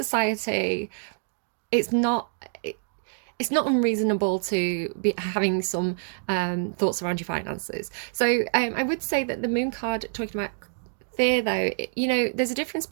It's not unreasonable to be having some thoughts around your finances. So I would say that the moon card talking about fear, though, there's a difference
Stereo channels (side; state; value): left; silent; digital silence